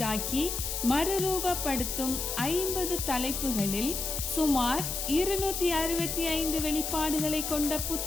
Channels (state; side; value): noise; left; hiss, 3 dB below the sound